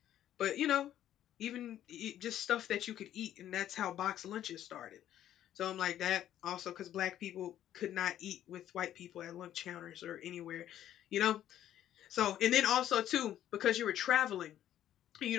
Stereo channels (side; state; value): right; quieter; 11.7 dB